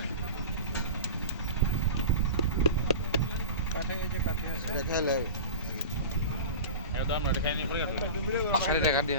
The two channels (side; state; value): both; inverted; correlation -0.32